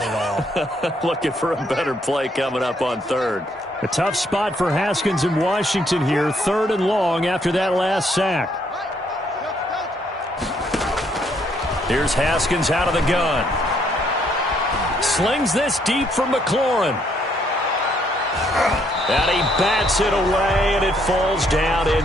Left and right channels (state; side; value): normal; both; correlation 0.70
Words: at all. Looking for a better play coming up on 3rd. A tough spot for Haskins in Washington here. 3rd and long after that last sack. Here's Haskins out of the gun. Slings this deep for McLaurin. And he bats it away, and it falls down